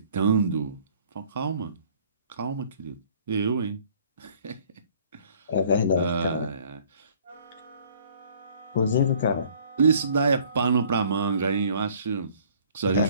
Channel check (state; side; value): inverted; both; correlation -0.56